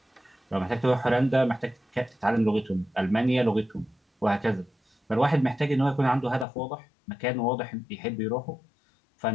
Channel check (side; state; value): right; drops out; at 6.5 s